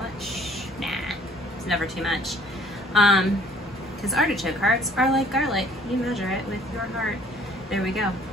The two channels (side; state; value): both; normal; correlation 0.57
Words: Nah, it's never too much. Because artichoke hearts are like garlic. You measure it with your heart. There we go.